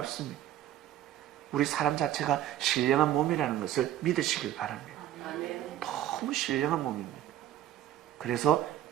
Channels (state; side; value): quieter; left; 12.4 dB